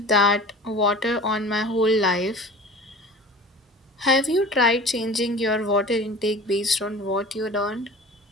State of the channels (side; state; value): both; normal; correlation 0.40